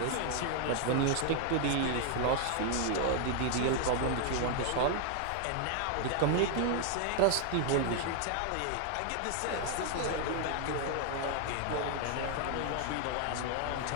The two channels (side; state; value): both; different; correlation 0.00